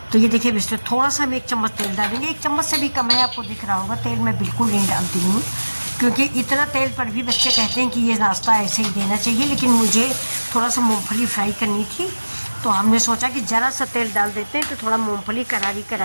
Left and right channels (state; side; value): inverted; both; correlation -1.00